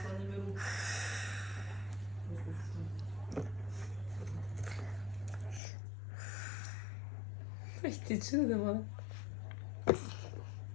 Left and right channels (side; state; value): right; drops out; at 5.6 s